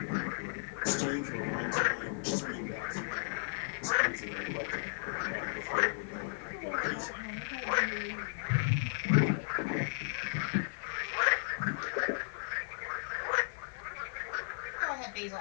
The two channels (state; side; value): silent; right; 54 dB below the other